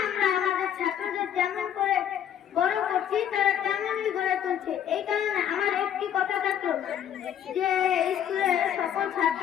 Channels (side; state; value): right; quieter; 9.8 dB